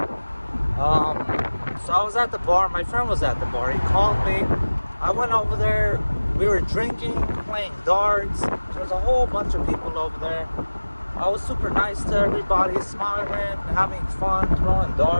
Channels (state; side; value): inverted; both; correlation -1.00